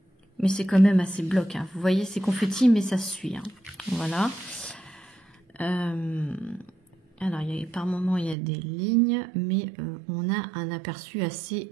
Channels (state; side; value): drops out; left; at 8.3 s